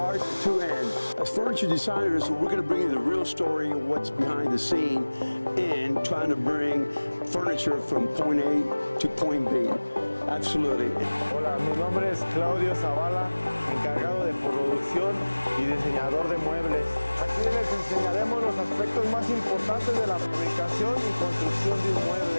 to end. As furniture designers, we're going to bring you the real story of what's behind the scene and trying to bring furniture from point A to point B. Absolutely. Hola, mi nombre es Claudio Zavala, encargado de producción y diseñador de muebles. Aquí les enseñaremos los aspectos más importantes de la fabricación y construcción de un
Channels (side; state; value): both; inverted; correlation -1.00